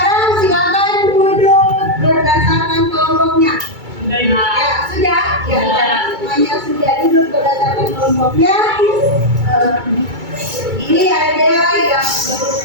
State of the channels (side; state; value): left; late; 2.3 ms